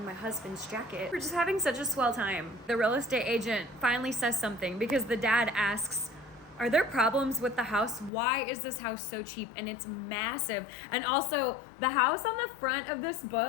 my husband's jacket. We're just having such a swell time. The real estate agent finally says something because the dad asks, "Are there problems with the house? Why is this house so cheap?" And it's massive. And also the house on the front of this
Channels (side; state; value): right; drops out; at 8.1 s